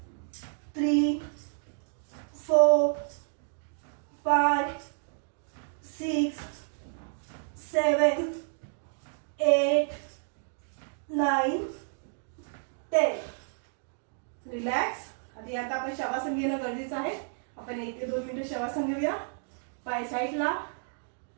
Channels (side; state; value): left; silent; digital silence